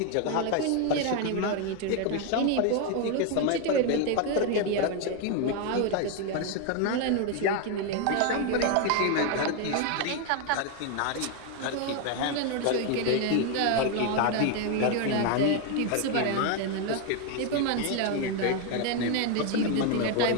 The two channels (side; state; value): both; different; correlation 0.01